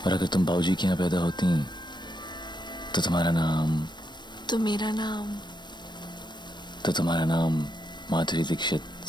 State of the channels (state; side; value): late; right; 0.22 ms